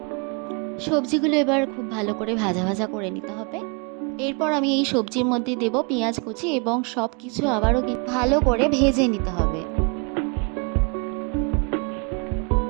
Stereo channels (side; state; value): left; quieter; 33.6 dB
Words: সবজিগুলো এবার খুব ভালো করে ভাজা ভাজা করে নিতে হবে। এরপর আমি এই সবজির মধ্যে দেব পেঁয়াজ কুচি, এবং সব কিছু আবারও ভালো করে ভেজে নিতে হবে।